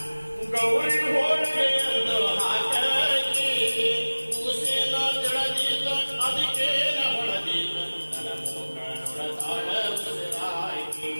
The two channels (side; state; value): both; inverted; correlation -1.00